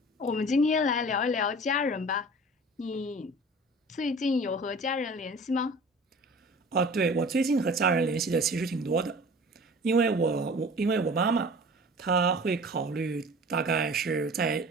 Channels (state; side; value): normal; both; correlation 0.42